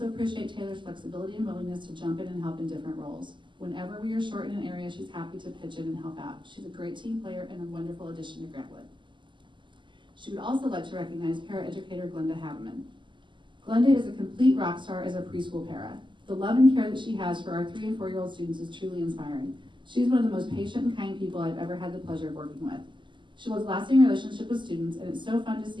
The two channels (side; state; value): left; late; 0.24 ms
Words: appreciate Taylor's flexibility and willingness to jump in and help in different roles. Whenever we are short in an area, she's happy to pitch in and help out. She's a great team player and a wonderful addition to Grant Wood. She would also like to recognize paraeducator Glenda Haveman. Glenda is a complete rock star as a preschool para. The love and care that she has for our 3- and 4-year-old students is truly inspiring. She's one of the most patient and kind people I've ever had the pleasure of working with. She builds lasting relationships with students, and it's so fun to